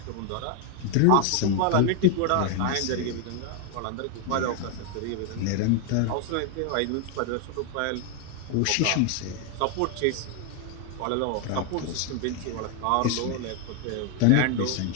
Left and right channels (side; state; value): both; different; correlation 0.01